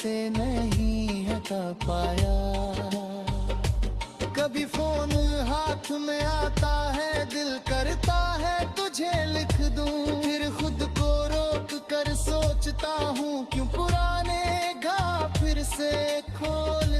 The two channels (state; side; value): identical; both; correlation 1.00